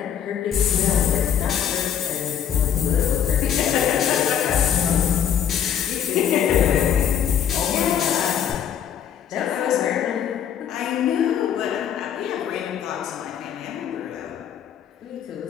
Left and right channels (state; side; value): quieter; right; 9.0 dB